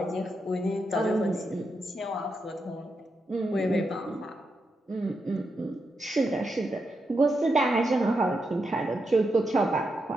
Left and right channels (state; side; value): normal; both; correlation 0.85